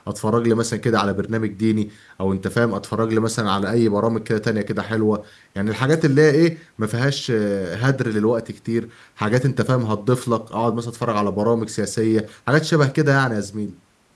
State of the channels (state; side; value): identical; both; correlation 1.00